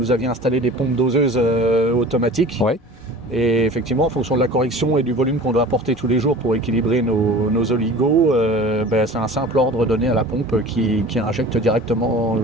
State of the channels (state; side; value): normal; both; correlation 0.41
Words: aviez installé des pompes doseuses automatiques. Oui. Et effectivement, en fonction de la correction et du volume qu'on doit apporter tous les jours pour équilibrer nos oligos, c'est un simple ordre donné à la pompe qui injecte directement